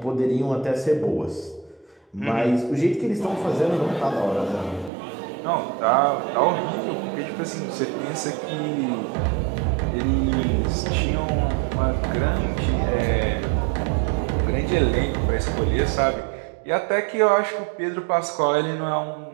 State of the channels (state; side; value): drops out; left; at 4.9 s